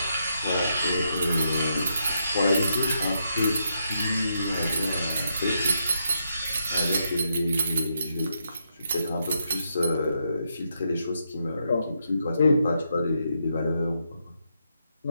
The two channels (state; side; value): inverted; both; correlation -0.80